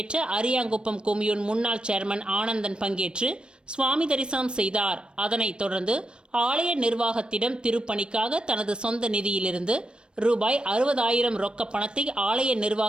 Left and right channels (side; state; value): left; late; 0.055 ms